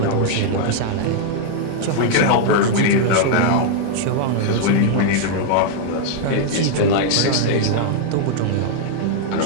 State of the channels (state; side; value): different; both; correlation -0.01